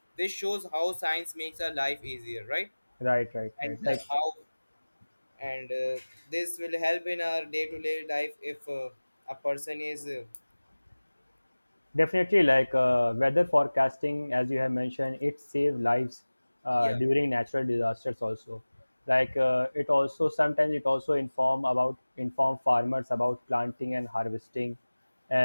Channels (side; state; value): both; inverted; correlation -1.00